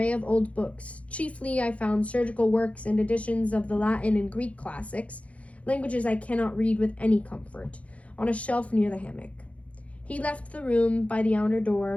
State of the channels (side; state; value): right; late; 0.065 ms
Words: of old books. Chiefly I found surgical works and editions of the Latin and Greek classics, languages I cannot read with any comfort, on a shelf near the hammock. He left the room by the outer